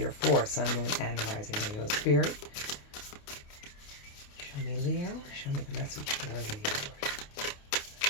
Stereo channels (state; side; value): late; right; 28 ms